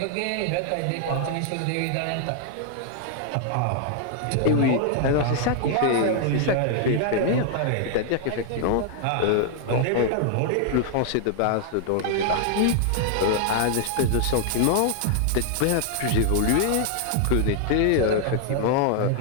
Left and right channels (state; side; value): different; both; correlation 0.00